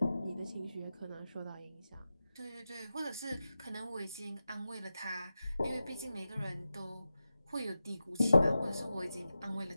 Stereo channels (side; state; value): both; inverted; correlation -0.92